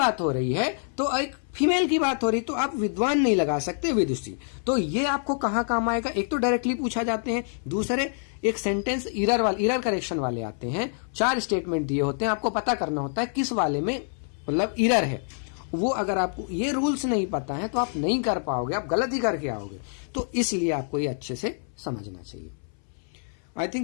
हो रही है तो एक फीमेल की बात हो रही, तो आप विद्वान नहीं लगा सकते, विदुषी। तो ये आपको कहाँ काम आएगा, एक तो डायरेक्टली पूछा जाते हैं, दूसरे एक सेंटेंस इरर करेक्शन वाले आते हैं। 4 स्टेटमेंट दिए होते हैं, आपको पता करना होता है किस वाले में मतलब इरर है। वो अगर आपको ये रूल्स नहीं पता है तो आप नहीं कर पाओगे, आप गलत ही करके आओगे। तो इसलिए आपको ये अच्छे से समझना चाहिए। आई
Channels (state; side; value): silent; right; 61 dB below the other